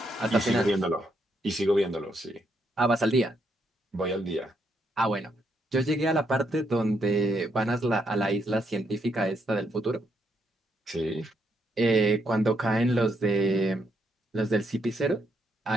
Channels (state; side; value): normal; both; correlation 0.77